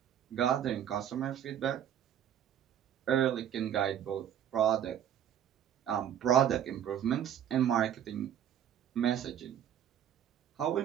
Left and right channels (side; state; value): left; quieter; 10.0 dB